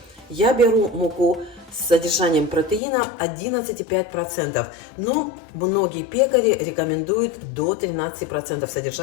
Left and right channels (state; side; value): drops out; right; at 2.8 s